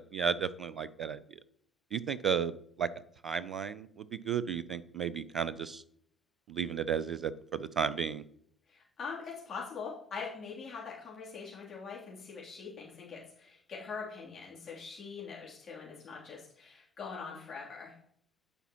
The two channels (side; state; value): left; quieter; 4.6 dB